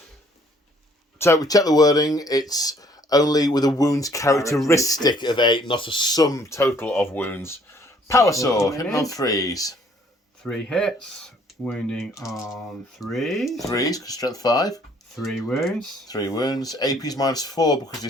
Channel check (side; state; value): both; normal; correlation 0.61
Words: So we check the wording. It's only with a wounds characteristic of 8, not a sum total of wounds. Power sword, hitting on 3s. 3 hits, wounding on 3s. 3s, because strength 5. 3 wounds. 3 wounds. AP's -4 because the